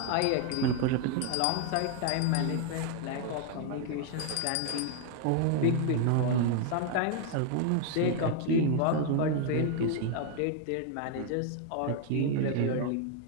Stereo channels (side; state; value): both; different; correlation 0.00